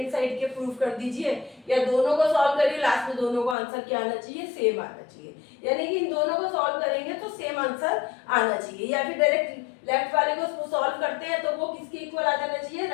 साइड के प्रूफ कर दीजिए, या दोनों को सॉल्व करिए, लास्ट में दोनों को आंसर क्या आना चाहिए, सेम आना चाहिए। यानी कि इन दोनों को सॉल्व करेंगे तो सेम आंसर आना चाहिए, या फिर डायरेक्ट लेफ्ट वाले को सॉल्व करते हैं तो वो किसके इक्वल आ जाना चाहिए,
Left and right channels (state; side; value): drops out; right; at 3.6 s